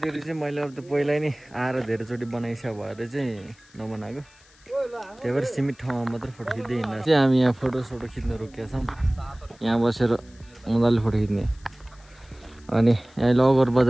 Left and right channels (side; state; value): left; noise; hiss, 28 dB below the sound